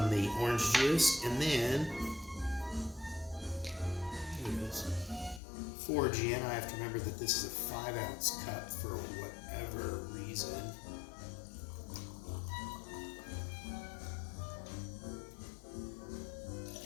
the orange juice, and then 4 gin. I have to remember that this is a 5-ounce cup for whatever reason.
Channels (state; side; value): drops out; right; at 5.4 s